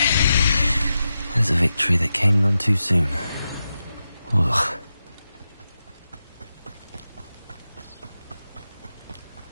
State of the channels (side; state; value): both; inverted; correlation -0.90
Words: There's a victory that came none too soon. Ugh.